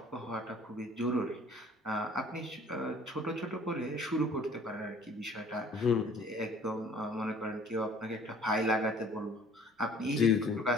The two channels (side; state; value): both; normal; correlation 0.53